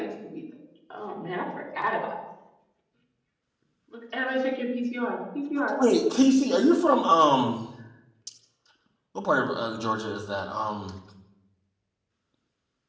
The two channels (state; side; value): identical; both; correlation 1.00